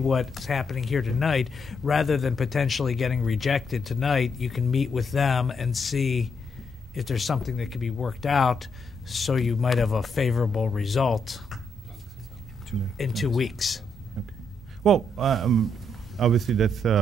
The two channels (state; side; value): normal; both; correlation 0.78